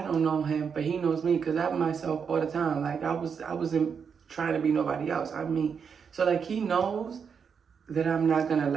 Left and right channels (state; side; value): quieter; left; 6.5 dB